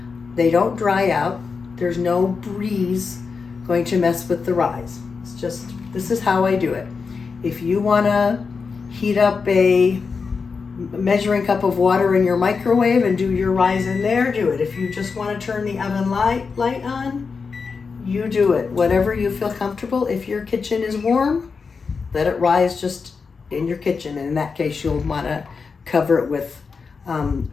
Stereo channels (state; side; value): quieter; right; 5.1 dB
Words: They don't dry out. There's no breeze going to mess with the rise. It's just, this is how I do it. If you wanna heat up a measuring cup of water in your microwave and do your rise in there, do it. If you just want to turn the oven light on, you do it. Whatever you feel comfortable. If your kitchen is warm, let it rise just in your kitchen. And in that case, you'll want to cover it with